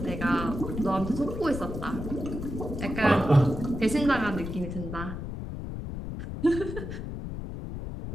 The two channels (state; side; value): noise; left; rumble, 7 dB below the sound